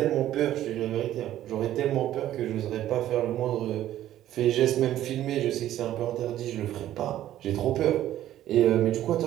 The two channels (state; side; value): quieter; left; 12.8 dB